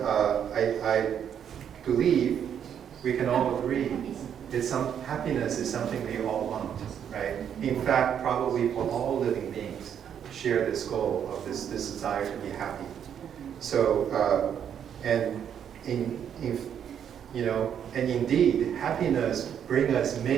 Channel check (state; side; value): quieter; left; 8.7 dB